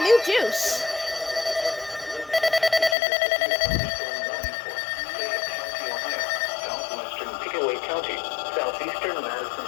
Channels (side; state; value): right; drops out; at 3.0 s